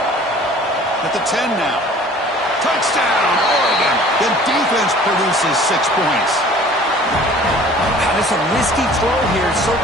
At the 10 now. Touchdown, Oregon. The defense produces 6 points. God, it's a risky throw here, so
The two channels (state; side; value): normal; both; correlation 0.49